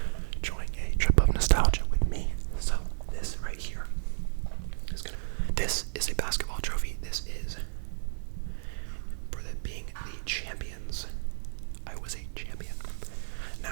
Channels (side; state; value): left; silent; digital silence